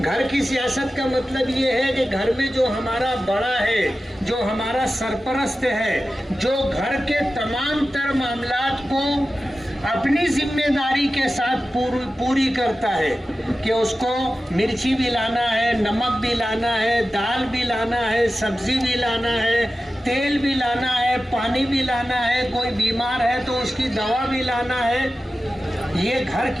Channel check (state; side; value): normal; both; correlation 0.94